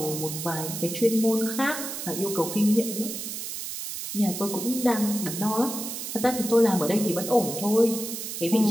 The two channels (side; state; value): right; noise; hiss, 6 dB below the sound